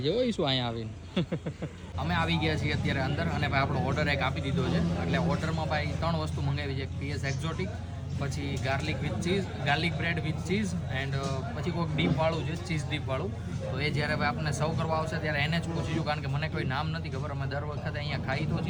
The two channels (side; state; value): both; identical; correlation 1.00